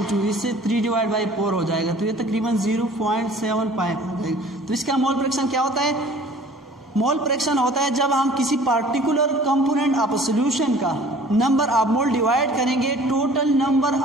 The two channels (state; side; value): normal; both; correlation 0.49